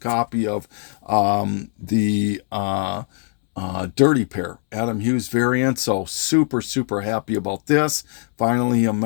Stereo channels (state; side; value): silent; right; 65 dB below the other